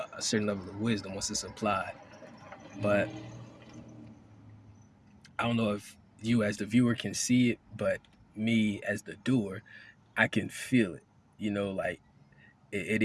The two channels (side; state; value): both; identical; correlation 1.00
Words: a certain level of wisdom once it's applied. But I don't know if you as the viewer can see it, but me as the doer, I can feel it. Like it